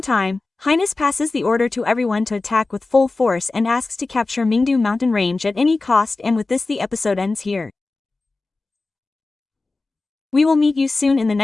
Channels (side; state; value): right; quieter; 3.5 dB